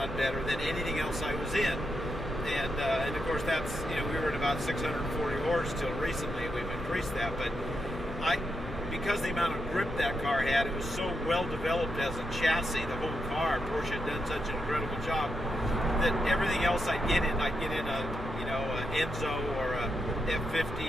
better, than anything else I was in. And of course, that's, we were at about 640 horse till recently. We've increased that, but because the amount of grip that car had, it was so well developed as a chassis, the whole car, Porsche had done such an incredible job, that everything else I'd get in a Enzo or a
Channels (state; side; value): normal; both; correlation 0.83